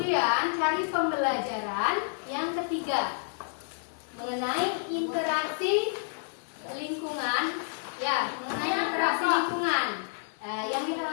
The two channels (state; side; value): silent; right; 58 dB below the other